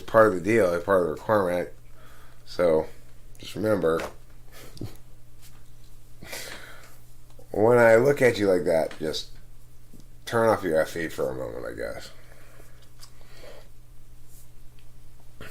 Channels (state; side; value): identical; both; correlation 1.00